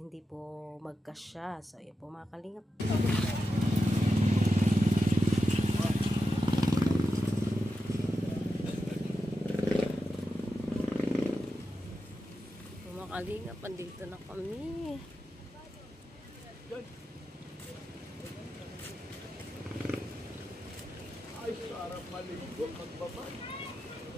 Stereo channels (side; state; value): both; normal; correlation 0.89